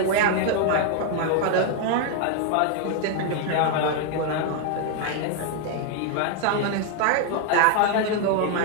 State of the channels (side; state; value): both; different; correlation 0.00